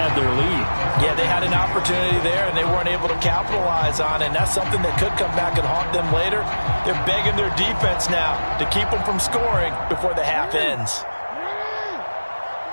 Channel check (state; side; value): inverted; both; correlation -1.00